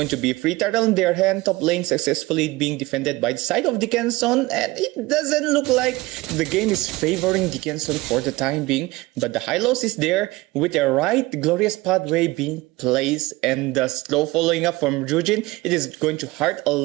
to be free turtle in their hand. Top lane successfully being defended by the side of Dickinson, and it doesn't look like the game is favoring Dickinson for the time being, but the Hylos is there with a right glorious pathway being placed, and the slow following up from Jujin. It is going to hurt a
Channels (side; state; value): left; quieter; 20.6 dB